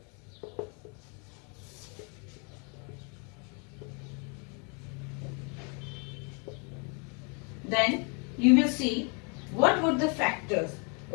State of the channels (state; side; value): quieter; right; 35.4 dB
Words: Then you will see what were the factors,